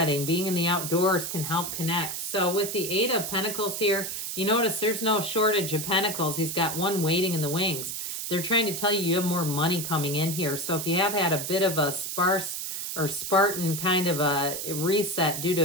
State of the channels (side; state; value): right; noise; hiss, 5 dB below the sound